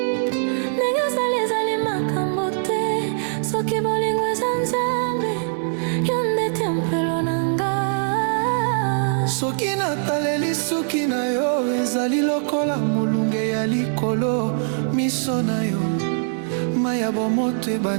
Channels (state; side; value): silent; left; 64 dB below the other